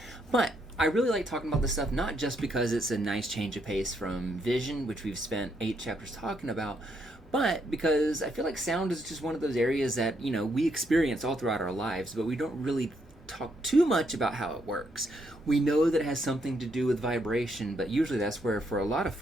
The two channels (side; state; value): both; normal; correlation 0.75